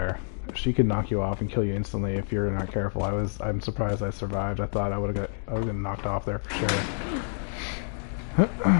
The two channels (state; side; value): silent; right; digital silence